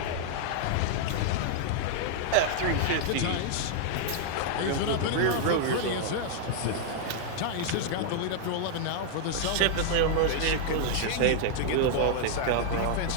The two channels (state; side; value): different; both; correlation -0.01